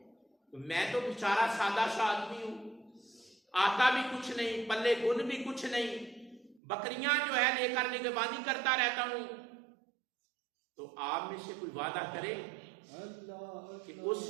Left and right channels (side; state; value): left; drops out; at 6.6 s